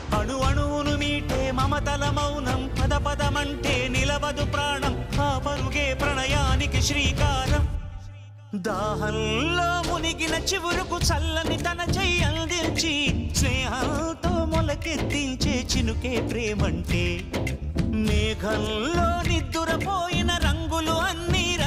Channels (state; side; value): identical; both; correlation 1.00